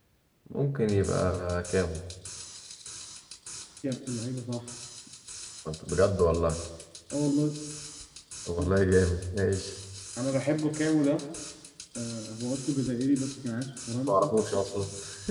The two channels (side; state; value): both; identical; correlation 1.00